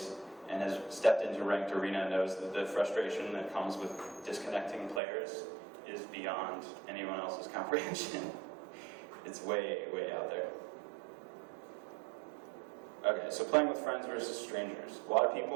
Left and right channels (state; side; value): drops out; left; at 5.0 s